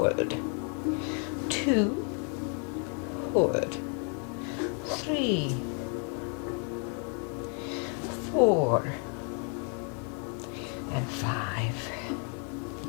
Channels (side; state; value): right; quieter; 39.7 dB